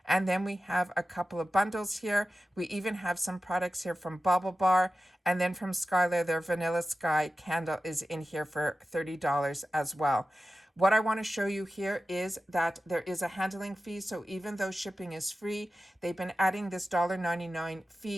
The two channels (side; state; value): both; normal; correlation 0.93